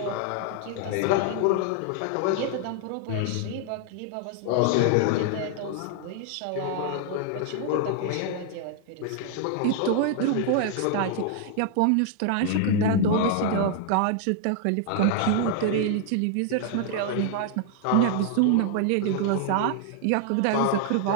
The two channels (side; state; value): both; different; correlation 0.00